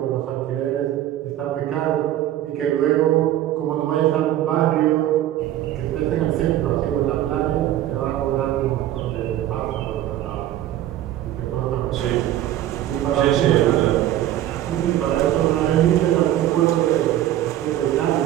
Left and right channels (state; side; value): quieter; left; 12.8 dB